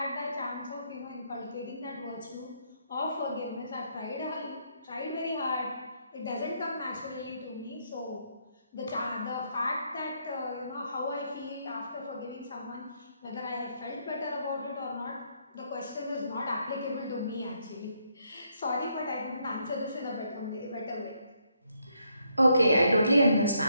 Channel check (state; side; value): inverted; both; correlation -0.74